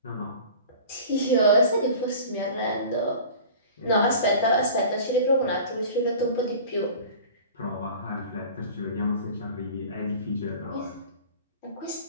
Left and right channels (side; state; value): both; inverted; correlation -0.41